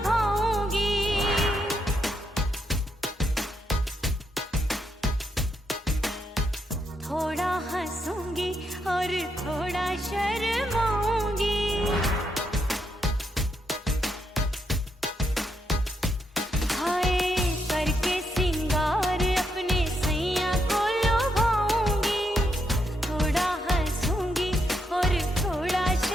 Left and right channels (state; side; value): normal; both; correlation 0.80